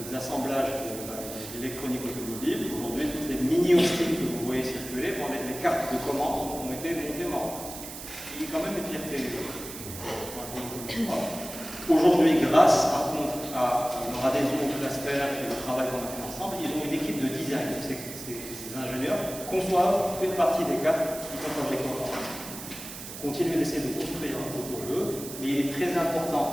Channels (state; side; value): noise; right; hiss, 11 dB below the sound